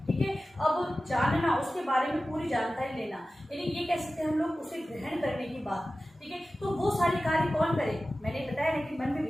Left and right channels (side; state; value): both; normal; correlation 0.95